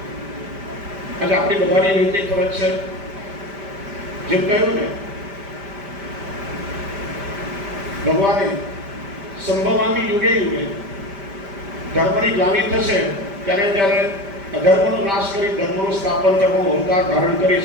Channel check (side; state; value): left; late; 5.1 ms